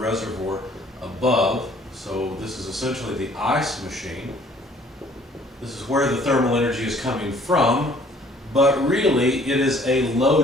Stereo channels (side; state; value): both; normal; correlation 0.58